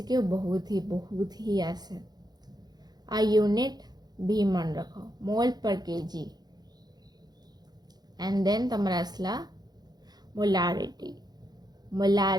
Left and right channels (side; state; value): left; late; 0.19 ms